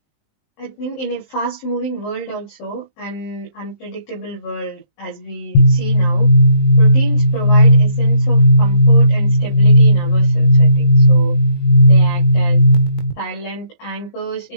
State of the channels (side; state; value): right; late; 20 ms